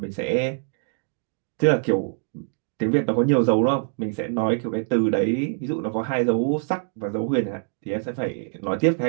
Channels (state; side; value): silent; left; 61 dB below the other